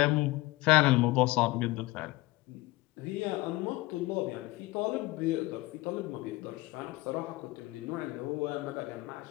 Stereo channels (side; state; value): right; quieter; 20.3 dB